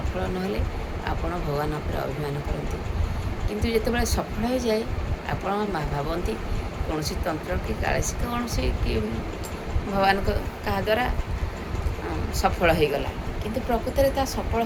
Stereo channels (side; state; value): both; identical; correlation 1.00